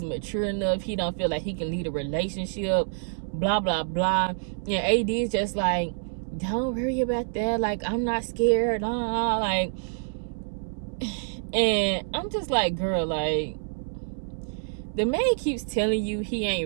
mature enough, he don't feel like he can lead a relationship, blah blah blah. And AD is just like, don't worry about that, like I'm not scared, like. And I'm just like, girl, like, the man keeps telling you he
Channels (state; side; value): silent; left; 60 dB below the other